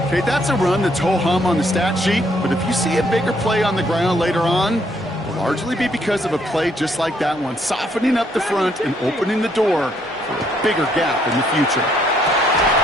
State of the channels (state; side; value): normal; both; correlation 0.70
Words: Okay, that's a run that's ho-hum on the stat sheet, but if you see a bigger play on the ground later on, it'll largely be because of a play just like that one, softening up the front and opening the door for a bigger gap in the future.